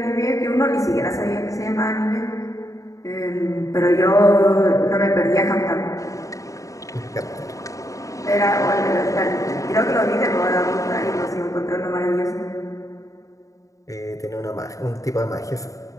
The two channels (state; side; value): late; right; 0.16 ms